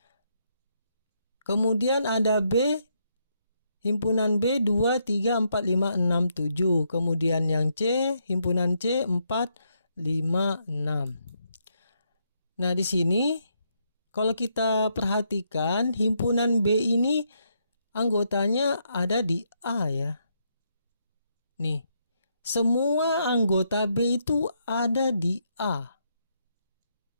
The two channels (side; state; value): both; inverted; correlation -0.77